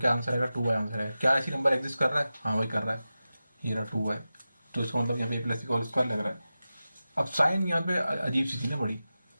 आंसर आएगा, 2y आंसर आएगा। क्या ऐसी नंबर एग्जिस्ट कर रहा है, हाँ वही कर रहा है, ये रहा 2y, तो इसका मतलब यहाँ पे a + b का होल स्क्वायर लग रहा है। अब साइन यहाँ पे अजीब सी थी ना बड़ी,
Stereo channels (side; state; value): both; inverted; correlation -0.94